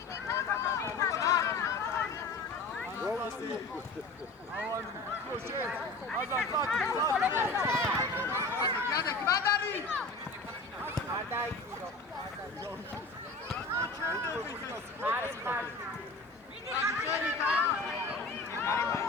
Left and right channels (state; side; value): quieter; right; 3.3 dB